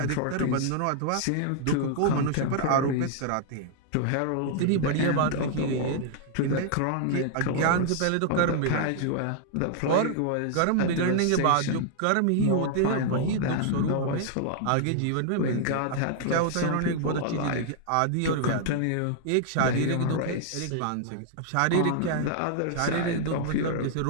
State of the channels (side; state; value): both; different; correlation 0.00